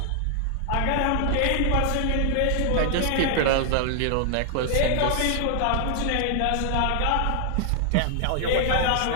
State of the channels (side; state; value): both; different; correlation 0.00